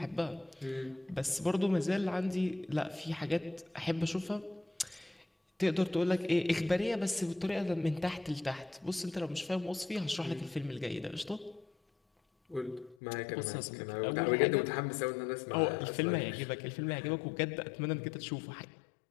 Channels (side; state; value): right; drops out; at 13.0 s